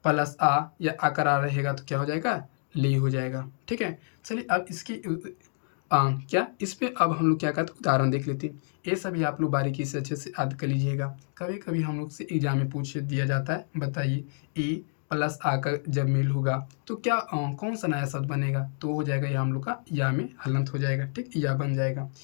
प्लस आ या आकर आ रहेगा तो क्या हो जाएगा? ले हो जाएगा। ठीक है, चलिए अब इसकी क्या इस पे अब हम लोग क्या करते हैं? उदाहरण देख लेते हैं। ये सभी आप लोग बारीकी से अच्छे से याद कर लीजिएगा। कभी कभी हम लोग से एग्जाम में पूछ दिया जाता है, बताइए ए प्लस आ का जब मेल होगा तो क्या कौन सा नया शब्द बनेगा? तो हो जाएगा या हम लोग का या में हलंत हो जाएगा। ठीक, या बन जाएगा।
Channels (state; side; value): silent; right; digital silence